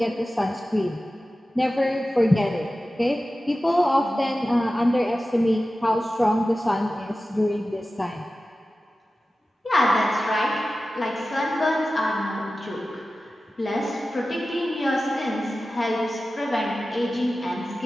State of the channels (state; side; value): normal; both; correlation 0.95